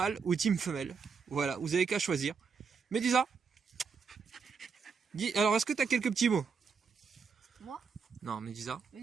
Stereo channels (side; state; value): left; quieter; 5.6 dB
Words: ou Team femelle. Voilà, vous avez qu'à choisir. Medusa, dis, alors est-ce que tu as quelques petits mots? Moi? Non, Medusa.